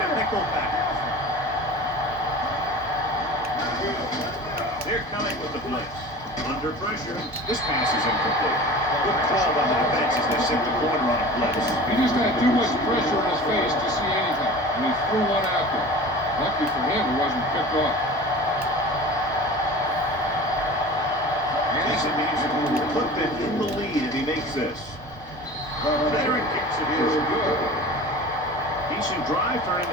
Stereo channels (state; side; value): normal; both; correlation 0.38